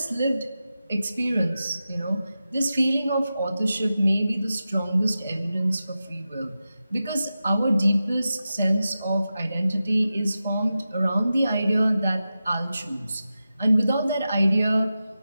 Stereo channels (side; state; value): both; inverted; correlation -0.92